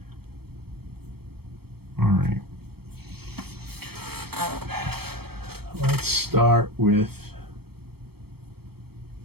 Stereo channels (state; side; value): late; left; 0.96 ms